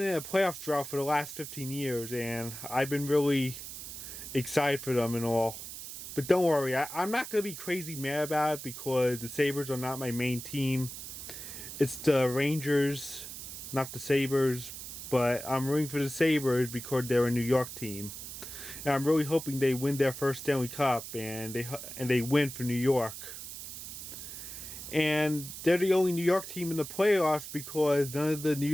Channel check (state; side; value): noise; right; hiss, 10 dB below the sound